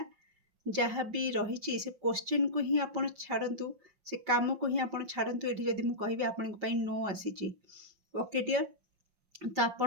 जहाँ भी रही से क्वेश्चन को ही आप छाड़ू से काम को ही आप छाड़ू ये जब मुझे कहि आपण नो आसी ओके डियर तो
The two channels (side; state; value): left; late; 5.6 ms